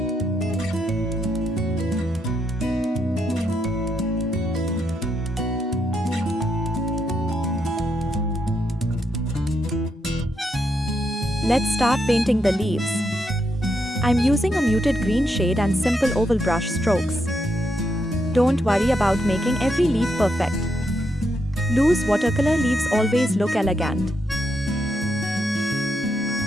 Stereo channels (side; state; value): both; normal; correlation 0.80